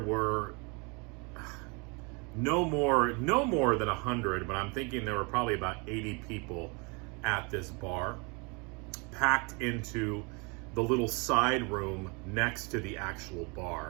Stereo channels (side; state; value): left; quieter; 30.7 dB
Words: no more than 100, but I'm thinking there were probably about 80 people at this bar, packed into the little side room next to the actual